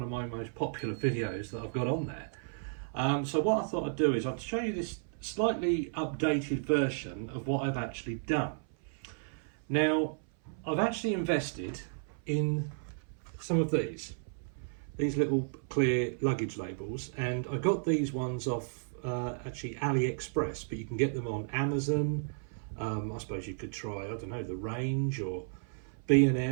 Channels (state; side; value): silent; left; 56 dB below the other